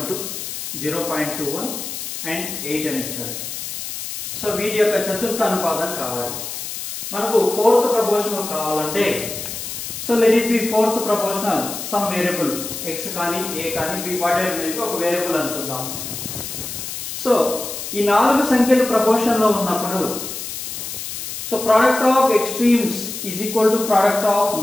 0.21 and 8 అని ఇచ్చారు. సో వీటి యొక్క చతుర్థ అనుపాతం కావాలి. మనకు ఫోర్త్ ప్రపోర్షనల్ కావాలంటే so let it be fourth proportional some variable x కానీ a కానీ b what ever may be ఒక వేరియబుల్ అనుకుందాం. సో ఈ నాలుగు సంఖ్యలు ప్రపోర్షన్ లో ఉన్నప్పుడు so product of extremes is equal to product of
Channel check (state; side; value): noise; left; hiss, 7 dB below the sound